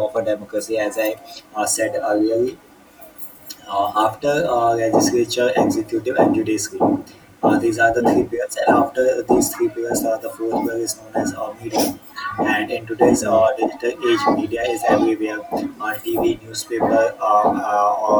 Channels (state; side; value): identical; both; correlation 1.00